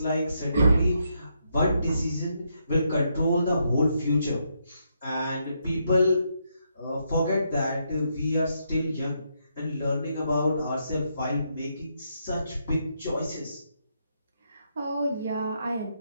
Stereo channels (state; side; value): inverted; both; correlation -0.78